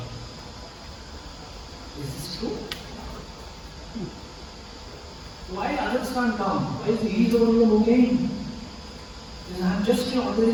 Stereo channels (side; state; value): both; identical; correlation 1.00